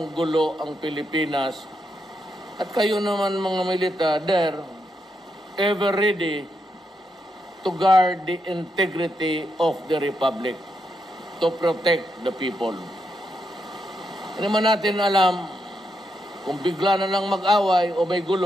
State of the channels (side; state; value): both; normal; correlation 0.82